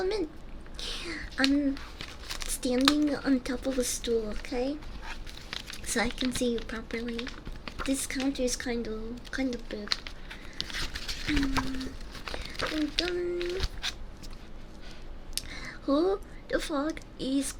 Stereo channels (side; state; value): both; identical; correlation 1.00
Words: in. I'm standing on top of a stool, okay? So I can see you properly. This counter is kind of big. Dun, dun. Who the fuck is